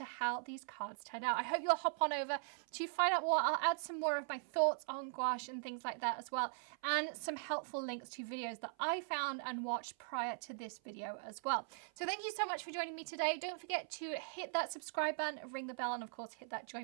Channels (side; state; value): left; silent; 51 dB below the other